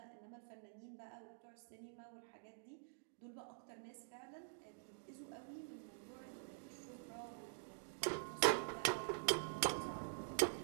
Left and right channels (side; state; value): left; silent; digital silence